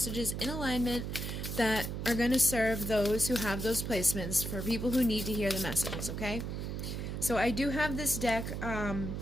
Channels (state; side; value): noise; right; hum, 4 dB below the sound